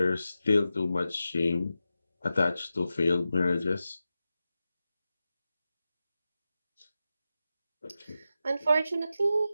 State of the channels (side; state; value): both; inverted; correlation -0.92